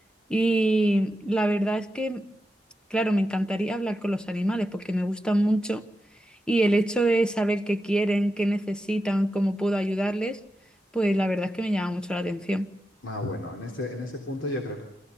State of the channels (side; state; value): both; normal; correlation 0.89